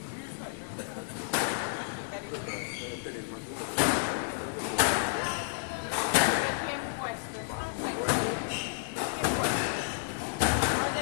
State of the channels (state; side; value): silent; right; digital silence